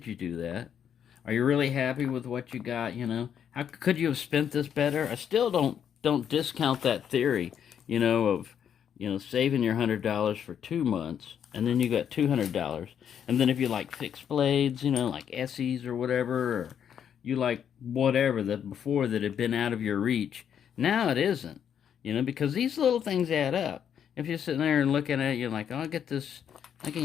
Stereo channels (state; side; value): quieter; right; 8.6 dB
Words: you do that? Are you really happy with what you got, How could you have spent this better? I still don't discount that theory, of, saving your $100 for 2 months, and then you got $200. And then if you like fixed blades, like Esse's or whatever, or you like whatever that before that had been out of your reach, now it isn't, because these little things add up. If you're sitting there and looking at it, you're like, oh, I get this, I